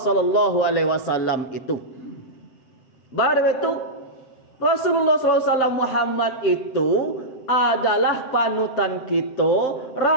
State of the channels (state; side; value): late; right; 7.7 ms